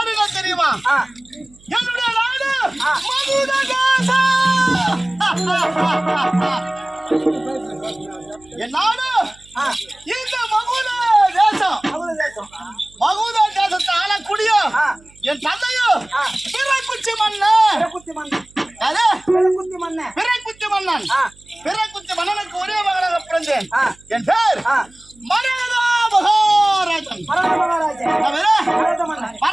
என்ன தெரியுமா என்னுடைய நாடு மகுட தேசம் என் நாடு இந்த மகுட தேசம் மகுட தேசத்தை ஆளக்கூடிய என் தந்தையும் பிறைக்குச்சி மன்னன் பிறைக்குச்சி மன்னன் பிறைக்குச்சி மன்னனுக்கு ஒரே மகனாக பிறந்தேன் என் பேர் மரகதா மகாராஜன்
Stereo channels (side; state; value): right; noise; hum, 28 dB below the sound